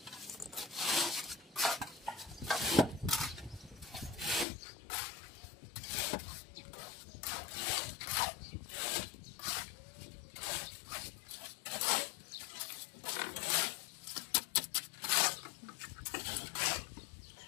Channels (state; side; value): drops out; right; at 4.5 s